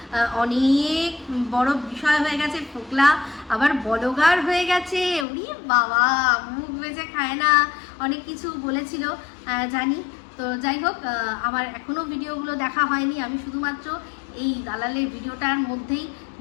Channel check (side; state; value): right; drops out; at 5.2 s